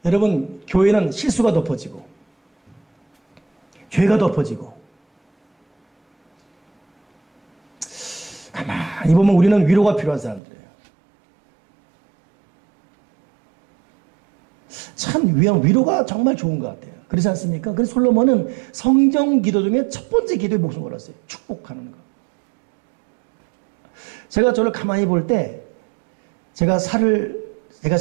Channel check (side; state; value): left; drops out; at 10.4 s